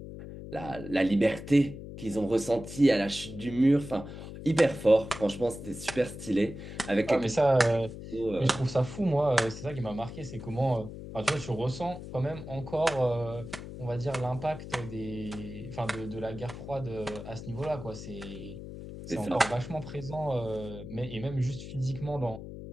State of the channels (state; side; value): noise; left; hum, 11 dB below the sound